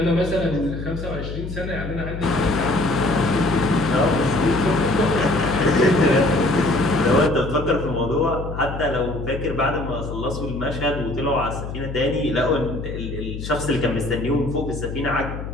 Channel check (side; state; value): left; noise; hum, 7 dB below the sound